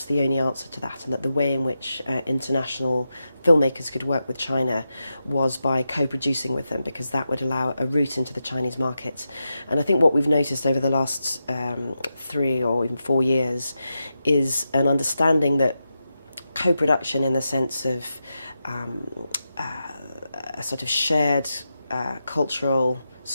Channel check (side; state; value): both; inverted; correlation -0.89